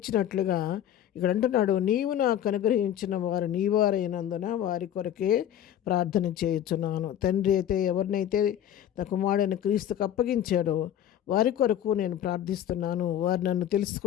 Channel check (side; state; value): right; quieter; 10.7 dB